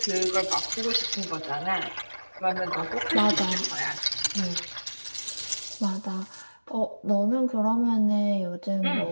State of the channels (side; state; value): both; inverted; correlation -1.00